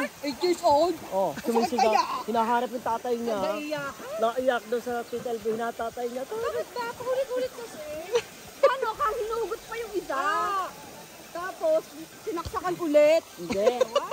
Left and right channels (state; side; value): identical; both; correlation 1.00